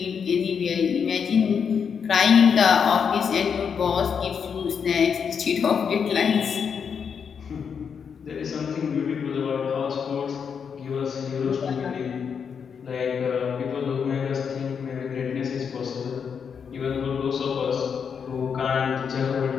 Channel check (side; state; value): right; quieter; 6.7 dB